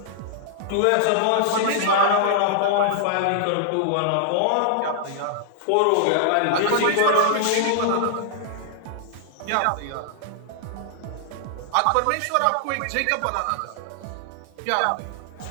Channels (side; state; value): both; different; correlation -0.01